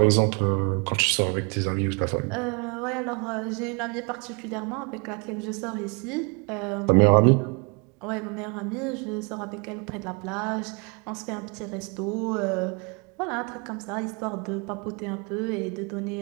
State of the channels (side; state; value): left; quieter; 32.1 dB